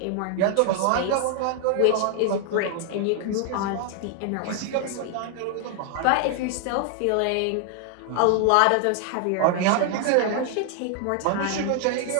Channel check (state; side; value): different; both; correlation 0.00